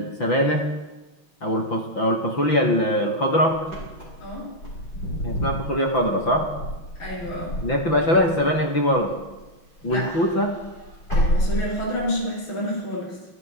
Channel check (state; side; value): late; right; 5.9 ms